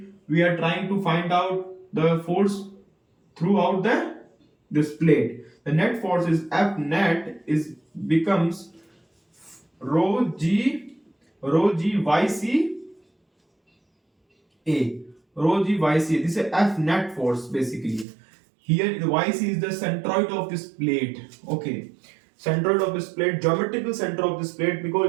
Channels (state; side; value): drops out; left; at 18.1 s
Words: we are trying to find out the force throughout this plate. The net force is F net is becomes rho g yc A, rho g yc. This is F net force basically. Here the yc is the centroid of this plate. Okay, centroid of this plate, geometrical center of this plate,